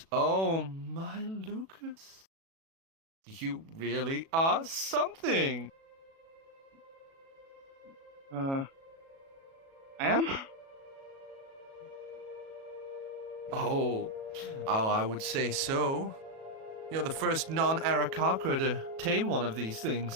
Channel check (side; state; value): left; late; 37 ms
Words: Oh, my Lucas. You really are something. I am? Oh, I would say so. You're the first non-Arakakra to tame one of these